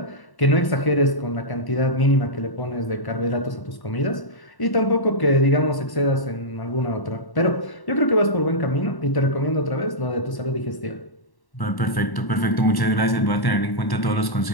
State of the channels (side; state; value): right; late; 1.1 ms